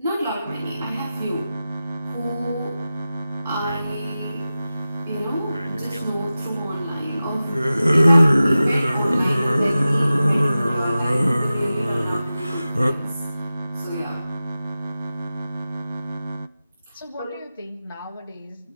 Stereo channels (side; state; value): both; inverted; correlation -0.94